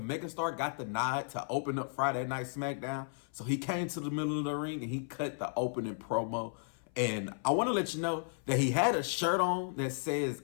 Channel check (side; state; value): right; silent; 55 dB below the other